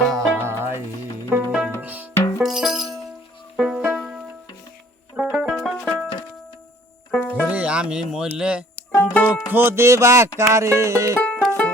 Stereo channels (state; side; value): normal; both; correlation 0.56